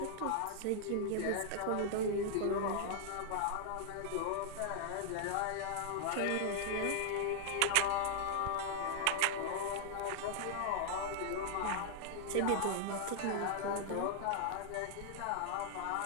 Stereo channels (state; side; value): different; both; correlation -0.01